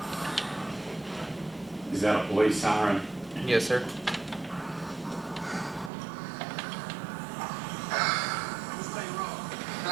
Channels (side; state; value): left; drops out; at 5.9 s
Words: Is that a police siren? Yes, sir.